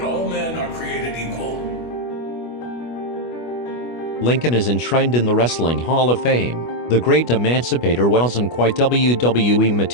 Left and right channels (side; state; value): right; late; 25 ms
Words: all men are created equal. Lincoln is enshrined in the Wrestling Hall of Fame. The great emancipator wasn't quite WWE